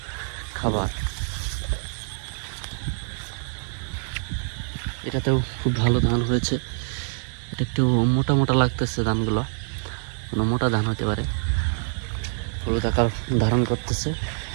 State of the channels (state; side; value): silent; left; digital silence